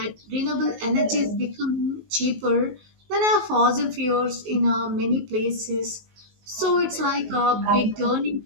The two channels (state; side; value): late; left; 19 ms